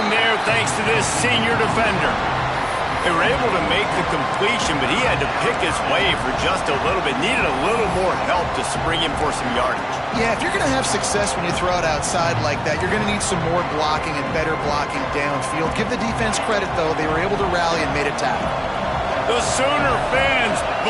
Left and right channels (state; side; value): identical; both; correlation 1.00